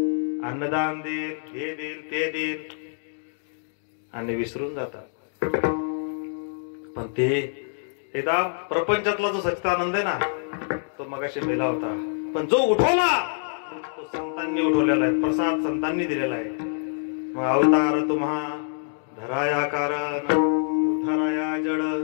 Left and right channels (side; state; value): right; silent; digital silence